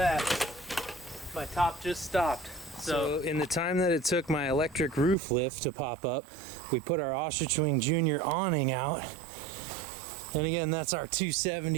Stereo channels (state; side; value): drops out; left; at 5.2 s